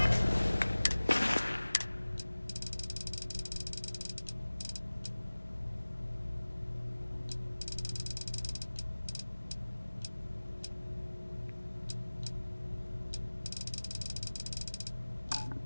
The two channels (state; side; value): inverted; both; correlation -1.00